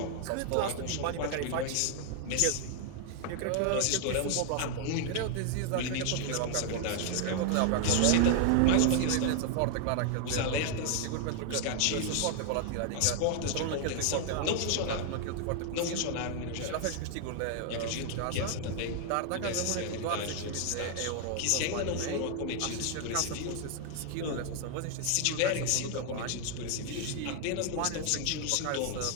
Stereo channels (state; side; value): different; both; correlation 0.00